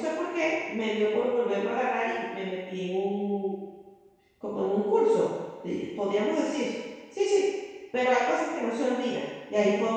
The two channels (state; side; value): identical; both; correlation 1.00